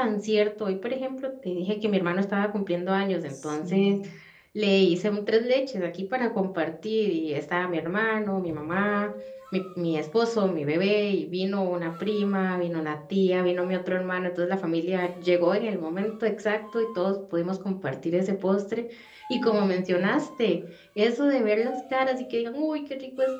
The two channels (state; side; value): identical; both; correlation 1.00